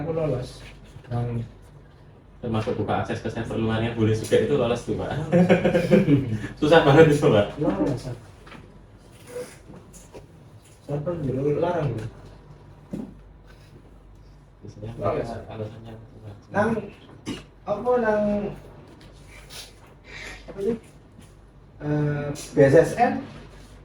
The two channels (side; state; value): both; identical; correlation 1.00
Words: lolos nang Termasuk buka akses ke server luarnya boleh juga, itu lolos tuh Pak. Susah banget itu Pak. lolos. Server dulu larang gitu. Biasanya alasannya Nang apa nang apa sih? BSSN